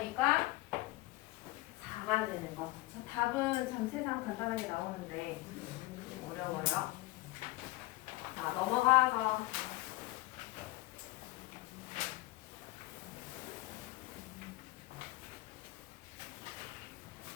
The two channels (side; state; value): right; quieter; 20.2 dB